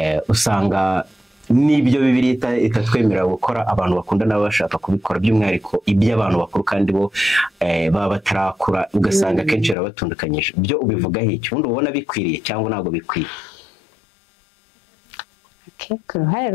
usanga n'ibyo Bibiliya itatwemerera gukora abantu bakundana baba bashaka kubikora, by'umwihariko iby'abantu bakuru kandi bo baba batarakura, ugasanga akenshi barabatundukanyije. Byo ubivugaho iki? Ubundi ubona bikwiriye cyangwa ntabwo bikwiye? Ku ruhare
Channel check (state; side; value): drops out; right; at 9.8 s